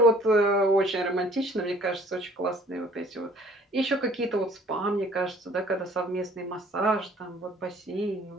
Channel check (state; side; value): normal; both; correlation 0.55